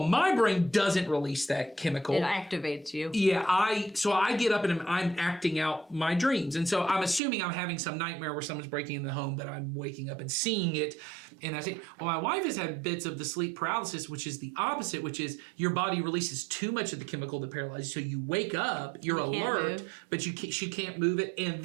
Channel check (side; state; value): left; drops out; at 7.2 s